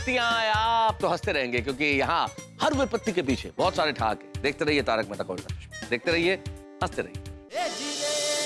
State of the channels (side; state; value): both; identical; correlation 1.00